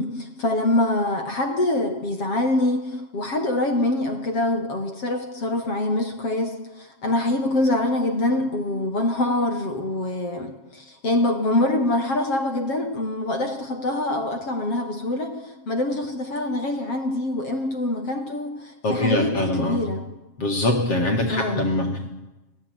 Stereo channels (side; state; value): right; late; 7.4 ms